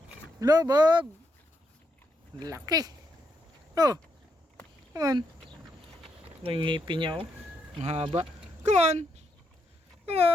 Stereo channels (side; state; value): both; normal; correlation 0.79